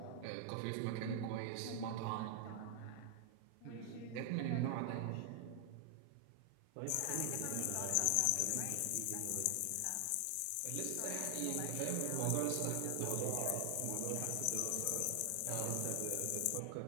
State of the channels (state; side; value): different; both; correlation 0.00